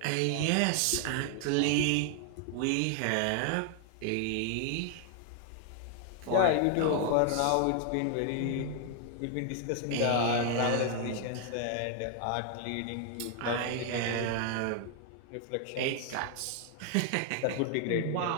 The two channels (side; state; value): both; different; correlation 0.00